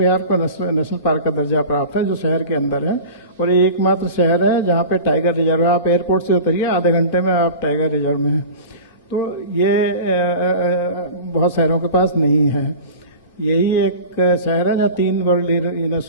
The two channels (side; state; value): both; inverted; correlation -0.35